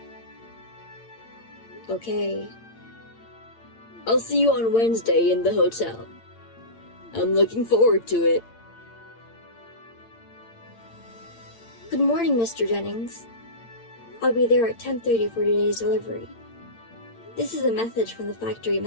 Okay. I'll see you on Wednesday in the hotel. I'm looking forward to it. Good morning, Mr. Jennings. I'll be there at 10:30 for today's delivery. This is a message from the factory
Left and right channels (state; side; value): late; right; 8.8 ms